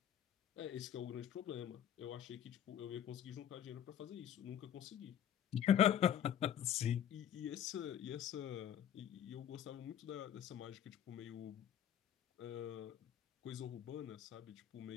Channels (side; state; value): right; quieter; 10.1 dB